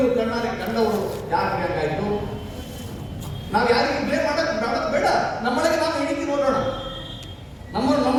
ಕಣ್ಣಾರೆ ಕಂಡವರು. ಯಾಕೆ ಹಂಗಾಯ್ತು? ನಾವು ಯಾರಿಗೆ ಬ್ಲೇಮ್ ಮಾಡಕ್ ಬೇಡ. ನಮ್ಮೊಳಗೆ ನಾವು ಇಣಿಕಿ ನೋಡೋಣ,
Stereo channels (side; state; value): both; identical; correlation 1.00